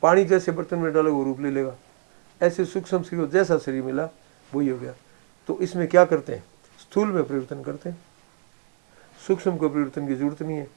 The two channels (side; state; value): left; silent; digital silence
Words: पानी जैसे बर्तन में डालोगे वो रूप ले लेगा। ऐसे सूक्ष्म शरीर जैसा शरीर मिला वही हो गया। तो इसमें क्या करते हैं? स्थूल में परिवर्तन करते हैं, सूक्ष्म को परिवर्तन की जरूरत नहीं है।